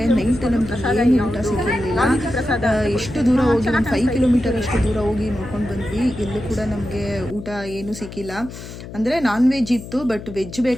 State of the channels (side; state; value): left; noise; hum, 12 dB below the sound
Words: ನೈಟ್ ನಮ್ಗೆ ಏನು ಊಟ ಸಿಕ್ಕಿರಲಿಲ್ಲ. ಎಷ್ಟು ದೂರ ಹೋಗಿ, ಒಂದು 5 ಕಿಲೋಮೀಟರ್ ಅಷ್ಟು ದೂರ ಹೋಗಿ ನೋಡ್ಕೊಂಡು ಬಂದ್ವಿ. ಎಲ್ಲೂ ಕೂಡ ನಮಗೆ ಊಟ ಏನೂ ಸಿಕ್ಕಿಲ್ಲ. ಅಂದರೆ ನಾನ್ ವೆಜ್ ಇತ್ತು, ಬಟ್ ವೆಜ್